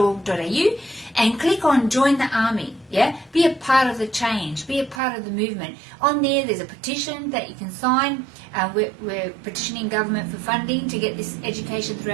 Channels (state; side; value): drops out; left; at 5.0 s